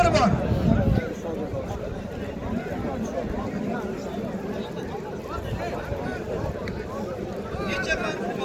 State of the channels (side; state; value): both; identical; correlation 1.00